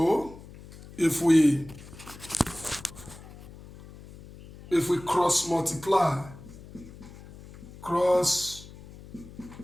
if we cross multiply,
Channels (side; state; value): left; noise; hum, 18 dB below the sound